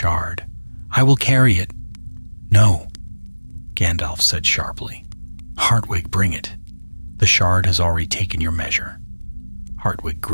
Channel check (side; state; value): both; inverted; correlation -1.00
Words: "I will carry it." "No," Gandalf said sharply. "Hartwig, bring it. The shard has already taken your measure." Hartwig